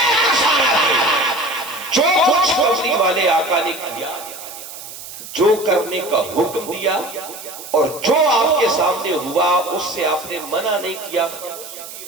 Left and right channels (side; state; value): right; noise; hiss, 13 dB below the sound